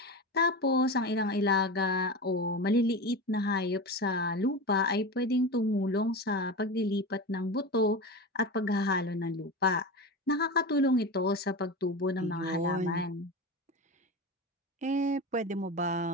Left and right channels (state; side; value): normal; both; correlation 0.25